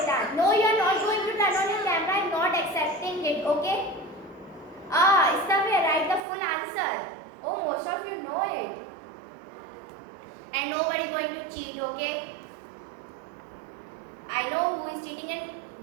No, you are not going to turn on your camera. I am not accepting it. Okay? It's the way. Write the full answer. Oh, most of you know it. And nobody going to cheat. Okay? I know who is cheating and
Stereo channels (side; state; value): left; drops out; at 6.2 s